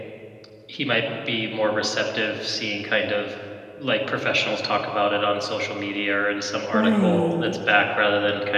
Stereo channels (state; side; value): identical; both; correlation 1.00